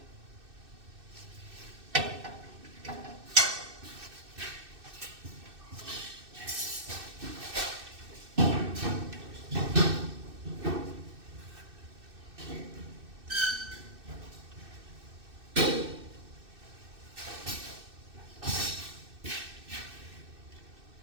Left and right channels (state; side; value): late; left; 2.6 ms